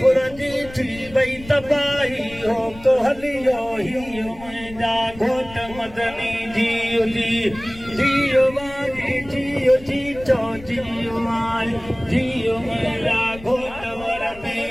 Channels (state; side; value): noise; left; rumble, 17 dB below the sound